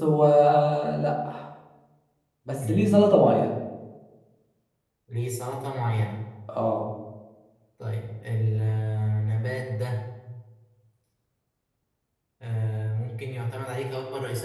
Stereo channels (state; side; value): identical; both; correlation 1.00